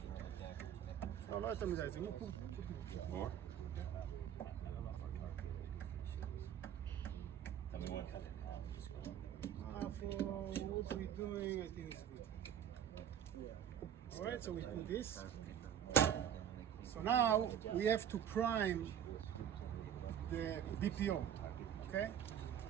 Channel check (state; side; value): quieter; left; 9.4 dB